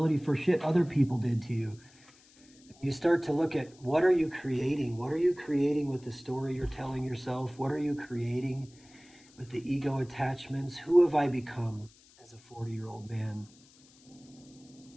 for shit other people did to you. You start to look at, what are you creating? What are you creating with the story you're telling yourself? What are you creating with the ego attachments? Who have I become as a 40-year-old man?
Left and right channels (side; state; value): left; noise; hiss, 27 dB below the sound